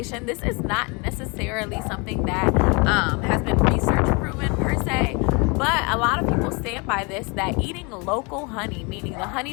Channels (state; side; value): quieter; right; 29.9 dB